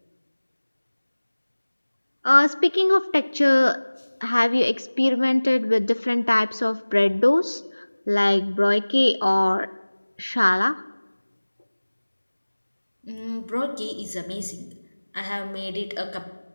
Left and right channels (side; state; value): both; inverted; correlation -1.00